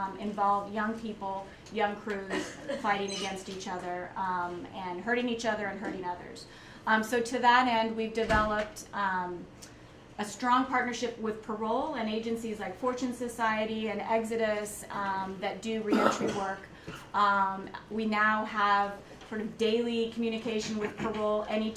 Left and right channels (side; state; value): both; identical; correlation 1.00